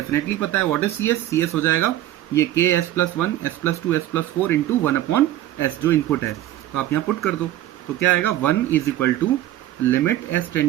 पता है। What is C s? C s हो जाएगा ये K s plus 1 s plus 2 s plus 4 into 1 upon s, जो इनपुट है। तो आप यहाँ पुट कर दो, तो क्या आएगा 1 is equal to limit s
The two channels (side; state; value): left; quieter; 13.7 dB